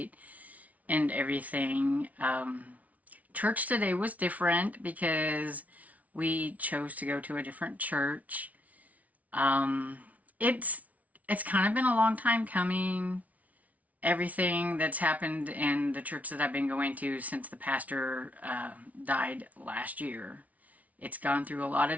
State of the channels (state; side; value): late; left; 0.070 ms